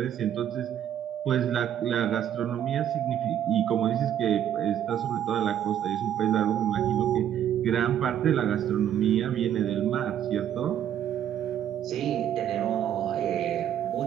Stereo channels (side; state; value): left; quieter; 10.2 dB